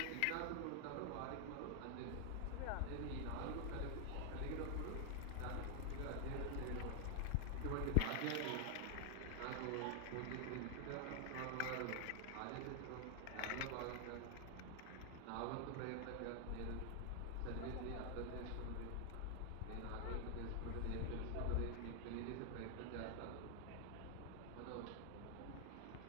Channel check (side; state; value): both; different; correlation 0.00